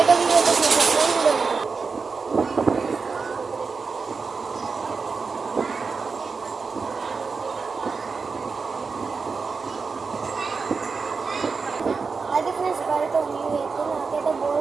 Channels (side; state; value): left; quieter; 4.8 dB